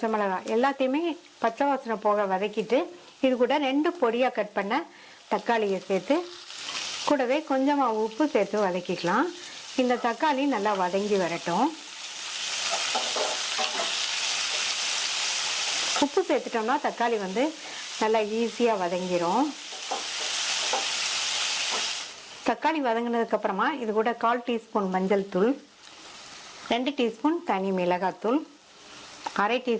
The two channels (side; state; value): both; identical; correlation 1.00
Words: மிளகாய் எல்லாத்தையுமே பச்சை வாசனை போக வதக்கிட்டு இது கூட 2 பொடியாக கட் பண்ண தக்காளியை சேர்த்து கூடவே கொஞ்சமாக உப்பு சேர்த்து வதக்கிக்கலாம். இந்த தக்காளி நல்லா வதங்கி வரட்டும். உப்பு சேர்த்துட்டோம்னா தக்காளி நல்லா ஈஸியாக வதங்கிடும். தக்காளி வதங்கினதுக்கப்புறமா இது கூட 1/4 டீஸ்பூன் மஞ்சள் தூள், 2 டீஸ்பூன் தனி மிளகாத்தூள், 1/2